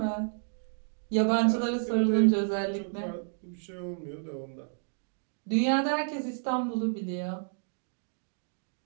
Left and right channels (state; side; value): silent; left; digital silence